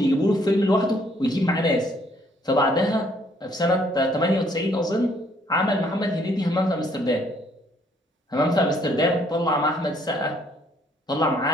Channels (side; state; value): both; normal; correlation 0.65